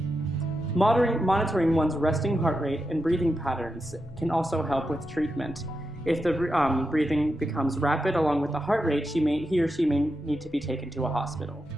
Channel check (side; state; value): both; normal; correlation 0.87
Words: Monitoring one's resting heart rate and breathing patterns can also help with treatment. If the breathing becomes rapid along with the heart rate, he or she may need to be taken to a hospital.